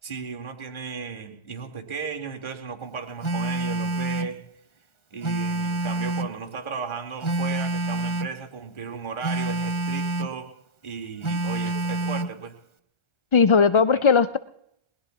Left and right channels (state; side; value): late; right; 1.4 ms